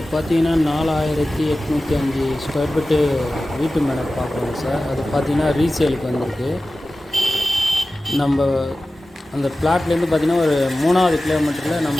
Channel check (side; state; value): both; normal; correlation 0.95